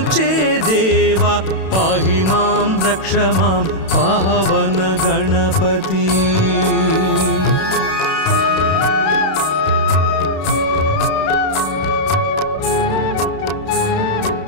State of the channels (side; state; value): right; late; 31 ms